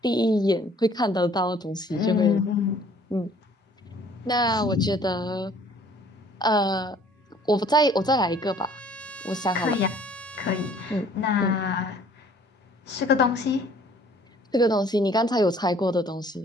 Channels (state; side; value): normal; both; correlation 0.56